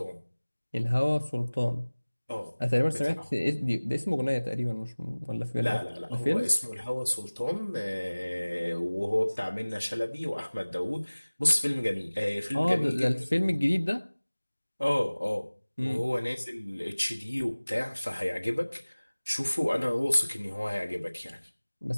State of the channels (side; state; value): both; inverted; correlation -1.00